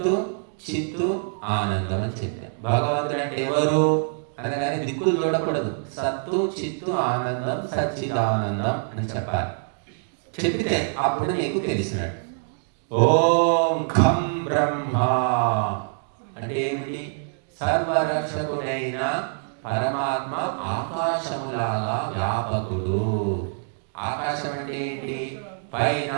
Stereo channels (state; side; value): silent; left; digital silence